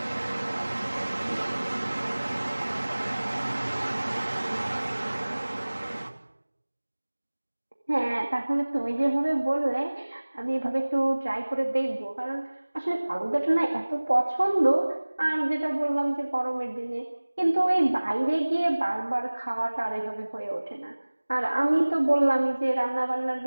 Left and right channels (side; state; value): both; inverted; correlation -1.00